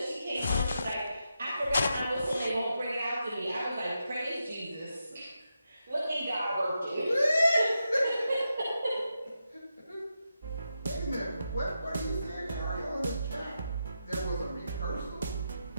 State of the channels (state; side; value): inverted; both; correlation -0.86